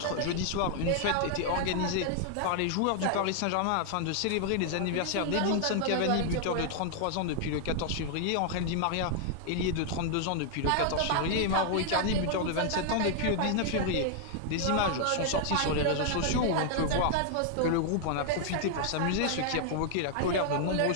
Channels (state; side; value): different; both; correlation 0.00